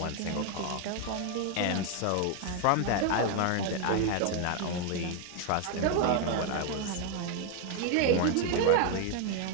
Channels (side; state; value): both; different; correlation 0.01